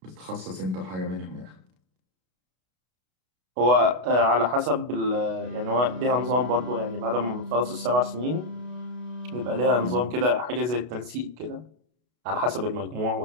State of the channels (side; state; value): left; late; 32 ms